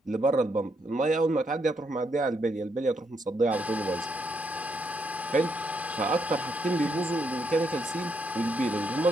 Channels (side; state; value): both; normal; correlation 0.77